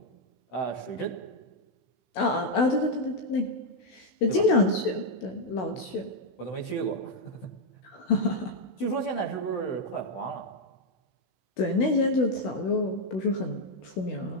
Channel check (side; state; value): right; late; 16 ms